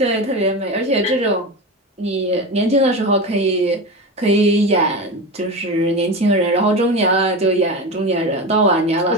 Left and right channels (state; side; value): normal; both; correlation 0.23